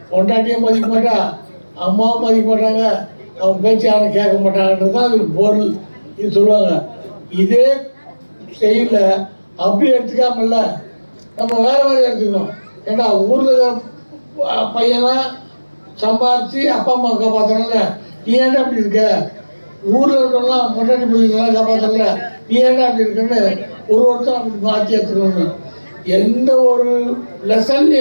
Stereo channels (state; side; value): inverted; both; correlation -1.00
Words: பொண்டாட்டியும் மதிக்க மாட்டான், அம்மாவும் மதிக்க மாட்டாங்க, அவன் பேச்சு யாரும் கேட்க மாட்டாங்கன்றது தான் அதுக்கு பொருள். இது சொல்லுவாங்க. இதே செயல அப்படி எடுத்துக்காமல்ல நம்ம வேற மாதிரி எடுத்துக்கணும். ஏன்னா ஊரில் பையனா சம்பாதிச்சு அப்பா அம்மா காப்பாற்றணும்ல, நீ ஏன்டா அப்படி இருக்க? ஊரில் இருக்கவங்களாம் பொண்டாட்டி பிள்ளைங்களாம் காப்பாற்றல, நீ ஏன்டா அப்படி இருக்குன்னு ஒருத்தரும் அப்படி மாற்றி எடுத்துக்கணும்னு. எந்த ஒரு